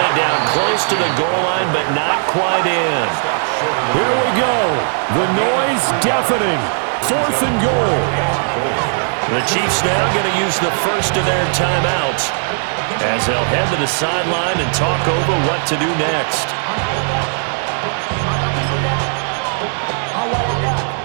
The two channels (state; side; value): silent; left; 68 dB below the other